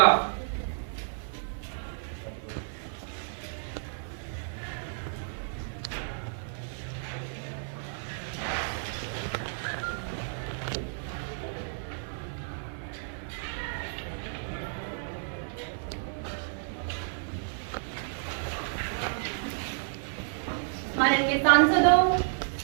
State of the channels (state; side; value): silent; left; 57 dB below the other